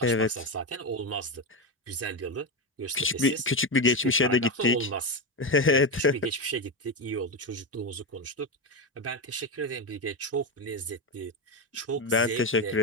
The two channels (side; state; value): both; normal; correlation 0.12